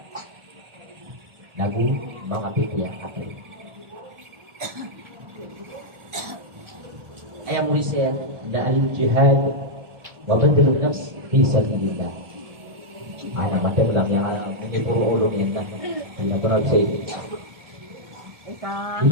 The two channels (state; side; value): late; left; 1.3 ms